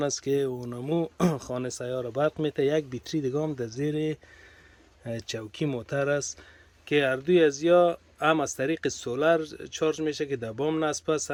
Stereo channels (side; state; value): both; identical; correlation 1.00